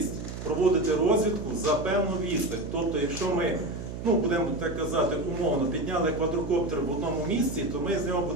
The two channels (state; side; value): noise; right; hum, 8 dB below the sound